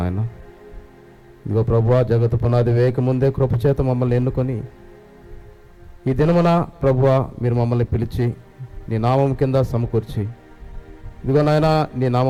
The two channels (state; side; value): identical; both; correlation 1.00